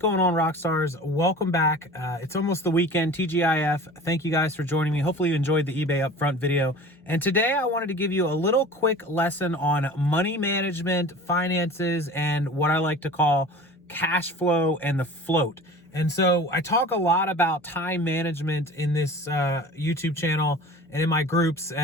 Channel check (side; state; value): both; normal; correlation 0.40